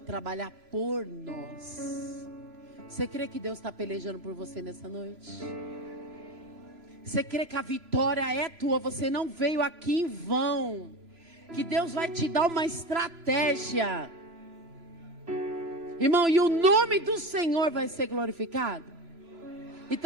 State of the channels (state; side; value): late; left; 3.0 ms